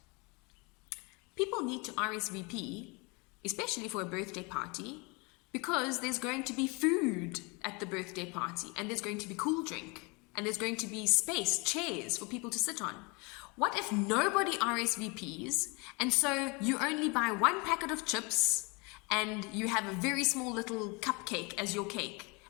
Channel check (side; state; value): right; quieter; 29.2 dB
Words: People need to RSVP, especially for a birthday party, because there's going to be food at the birthday party, and there's going to be cool drink, and there's going to be space, chairs for people to sit on. What if nobody RSVPs, and so you only buy one packet of chips, and you have a very small little cupcake as your cake,